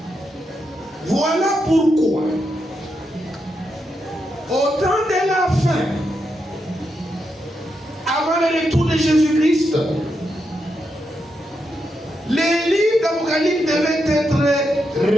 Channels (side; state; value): both; normal; correlation 0.84